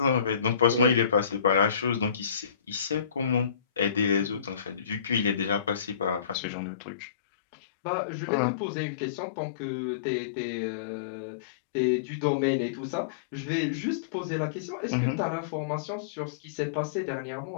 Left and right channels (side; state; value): right; drops out; at 6.4 s